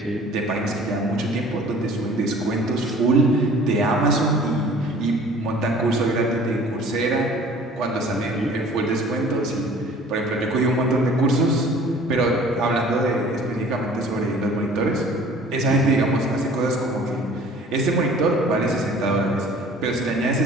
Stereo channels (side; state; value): both; normal; correlation 0.49